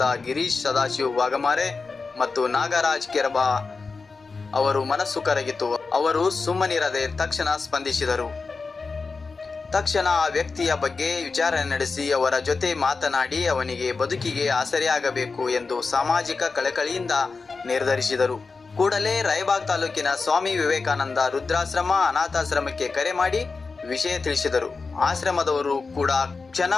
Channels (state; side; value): quieter; right; 4.3 dB